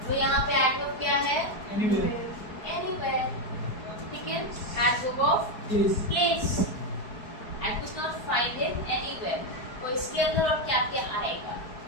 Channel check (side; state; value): right; late; 4.7 ms